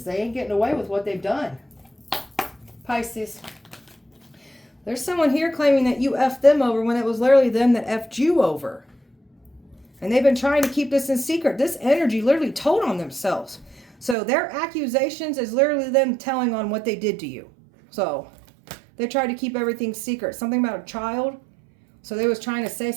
They ain't getting away with what they've done. Pisces. There's someone here claiming that you effed them over when it was literally them that effed you over. And they've been trying to keep this in secret. This energy literally told on themselves. So their accusations is literally them telling on what they did to you. So they tried to keep everything secret. Something about a child. So they was trying to say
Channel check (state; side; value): drops out; left; at 14.2 s